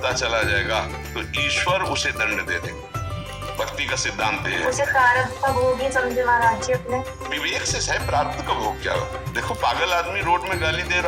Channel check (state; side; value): identical; both; correlation 1.00